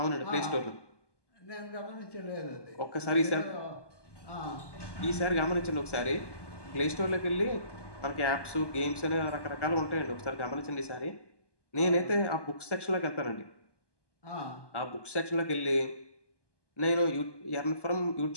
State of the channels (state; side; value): late; right; 1.2 ms